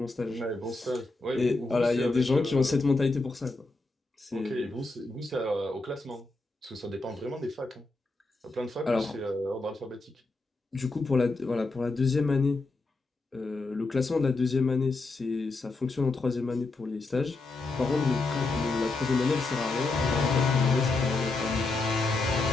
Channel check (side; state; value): right; quieter; 3.4 dB